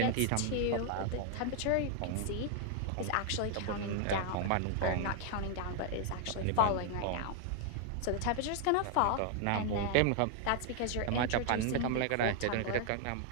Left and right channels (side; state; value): both; different; correlation 0.00